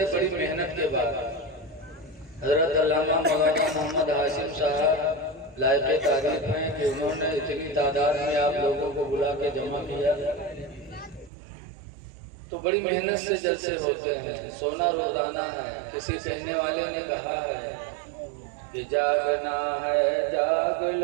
بڑی محنت کے بعد حضرت علامہ مولانا محمد ہاشم صاحب لائق تعریف ہیں کہ انہوں نے اتنی تعداد میں آپ لوگوں کو بلا کے جمع کیا، تو بڑی محنت سے جلسے ہوتے ہیں۔ سونا روزانہ ہے۔ کسی کہنے والے نے کہا ہے کہ جاگنا ہے جاگ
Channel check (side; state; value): left; drops out; at 11.3 s